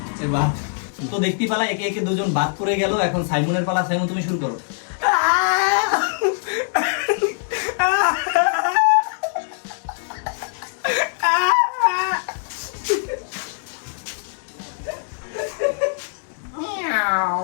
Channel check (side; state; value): right; silent; digital silence